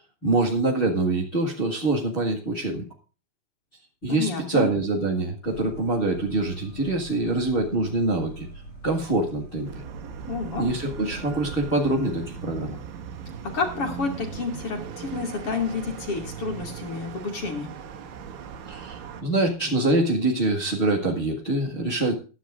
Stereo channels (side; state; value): right; late; 6.3 ms